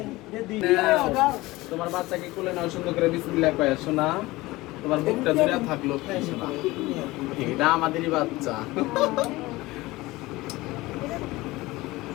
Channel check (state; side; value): quieter; right; 19.9 dB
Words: তোমার বাচ্চাকে কোলে নাও, সুন্দর করে বিসমিল্লাহ কয় শোনা, তোমার বুকটা জুড়ে থাকলো শোনা, এটা আমাদেরই বাচ্চা।